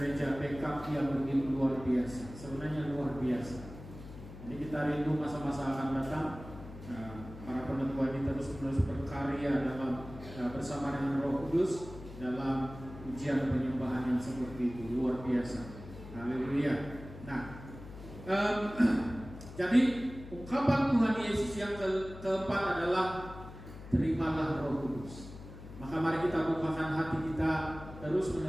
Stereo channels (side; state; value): left; noise; hum, 14 dB below the sound